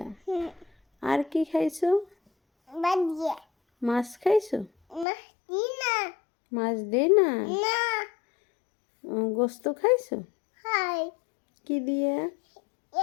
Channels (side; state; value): right; drops out; at 5.1 s